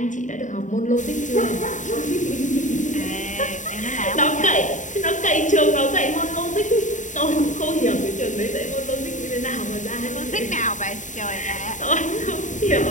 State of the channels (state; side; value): late; right; 0.36 ms